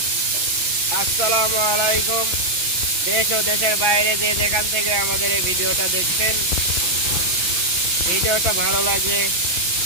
আসসালামু আলাইকুম। দেশ ও দেশের বাইরে যে যেখান থেকে আমাদের এই ভিডিওটা দেখছেন, ভিডিওটা ভালো লাগলে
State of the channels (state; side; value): late; left; 6.0 ms